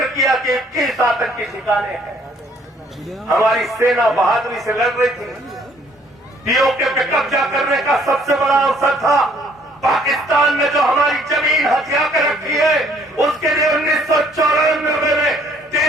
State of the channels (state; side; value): normal; both; correlation 0.62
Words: किया कि 21 आतंकी ठिकाने हैं। हमारी सेना बहादुरी से लड़ रही थी। पीओके पे कब्जा करने का सबसे बड़ा अवसर था। पाकिस्तान ने जो हमारी जमीन हथिया कर रखी है, उसके लिए 1994 में